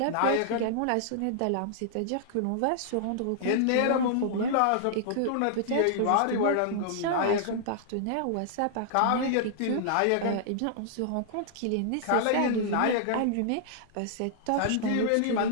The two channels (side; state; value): both; different; correlation -0.01